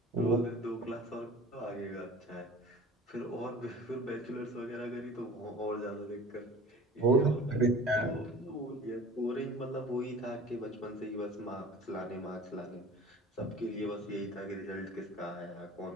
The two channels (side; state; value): both; normal; correlation 0.43